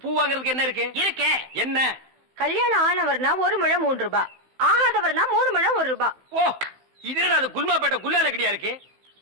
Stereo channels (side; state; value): left; late; 15 ms